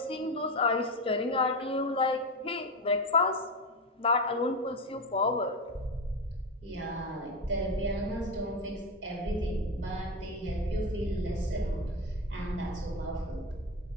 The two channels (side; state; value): both; normal; correlation 0.17